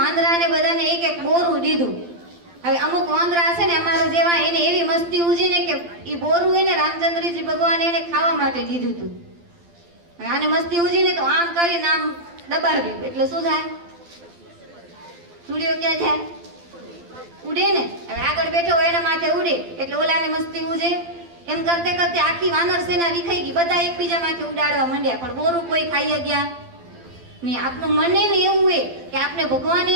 બધાને એક એક બોરું દીધું. હવે અમુક વાંદરા હશે ને અમારા જેવા એને એવી મસ્તી ઉજી ને કે એ બોરું એને રામચંદ્રજી ભગવાને એને ખાવા માટે દીધું હતું. આને મસ્તી ઉજી ને તો આમ કરીને આમ દબાવ્યું એટલે શું થાય? સુડિયો ક્યાં જાય? ઉડે ને. હવે આગળ બેઠો હોય એના માથે ઉડે એટલે ઓલાને મસ્તી ઉજે. એમ કરતે કરતે આખી વાનર સેના વિખાઈ ગઈ, બધા એકબીજા માથે ઉડાડવા માંડ્યા, પણ બોરું કોઈ ખાઈ ગયા નહીં. આપનું મને ને એવું હોય કે આપણે ભગવાને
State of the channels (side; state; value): left; late; 12 ms